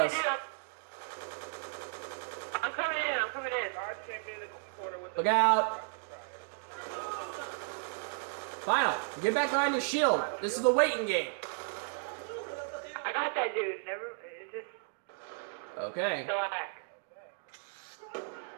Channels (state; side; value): silent; left; digital silence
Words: I'm coming in. I'm coming in. Look out. Final, get back behind your shield. This is the waiting game. I got that dude. Never. It just Okay. slack.